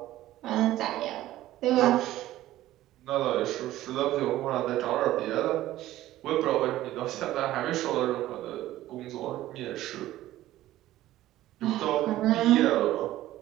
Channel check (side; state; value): left; quieter; 14.8 dB